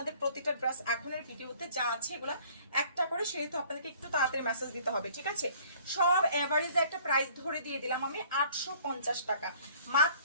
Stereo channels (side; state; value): both; inverted; correlation -0.54